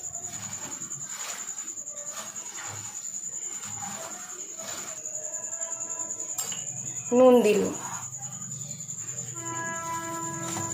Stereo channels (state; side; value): identical; both; correlation 1.00